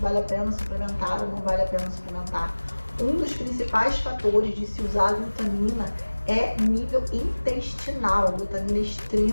a pena suplementar ou não vale a pena suplementar. Um dos principais fatores de se usar a glutamina é nível intestinal. A glutamina é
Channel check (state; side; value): inverted; both; correlation -1.00